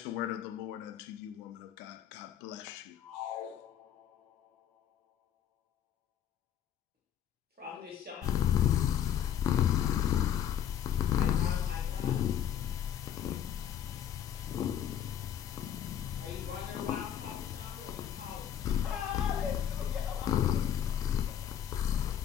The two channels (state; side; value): quieter; right; 9.7 dB